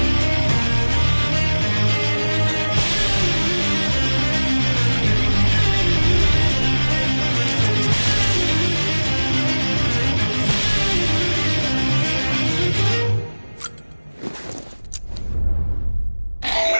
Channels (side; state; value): both; inverted; correlation -1.00